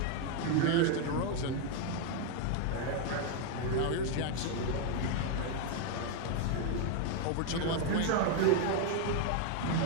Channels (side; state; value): both; different; correlation 0.01